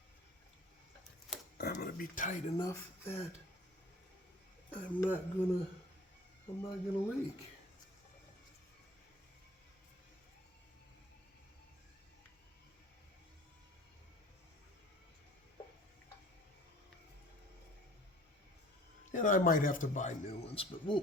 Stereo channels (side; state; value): both; normal; correlation 0.49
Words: I'm going to be tight enough that I'm not gonna leak. And I might have to buy new ones, but